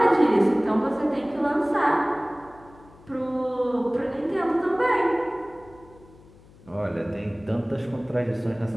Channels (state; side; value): noise; left; hum, 24 dB below the sound